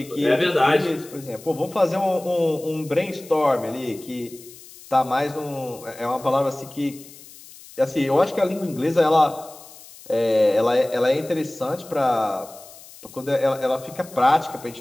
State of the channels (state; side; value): noise; left; hiss, 20 dB below the sound